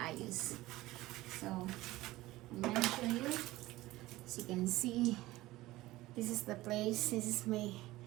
So, I'm gonna show you. As you can see, this is the place. This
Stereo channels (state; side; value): quieter; left; 17.8 dB